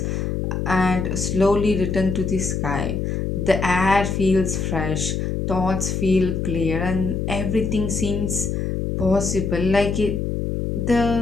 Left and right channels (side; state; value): left; noise; hum, 1 dB below the sound